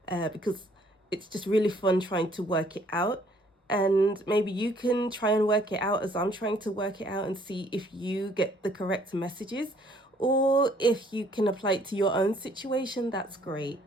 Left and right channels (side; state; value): both; normal; correlation 0.62